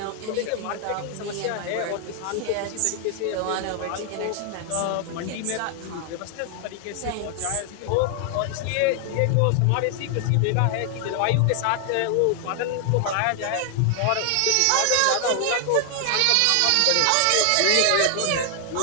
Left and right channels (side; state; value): both; different; correlation 0.00